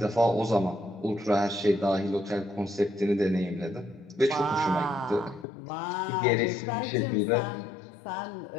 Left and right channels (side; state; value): right; drops out; at 5.5 s